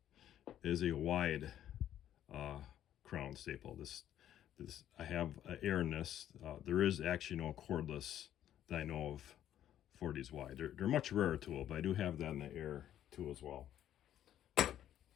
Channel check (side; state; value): right; quieter; 11.3 dB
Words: is a wide crown staple. This I have air in this. There is actually no cordless that I know of for these wide. They're much rarer tool, but I do have that in the air tool as well.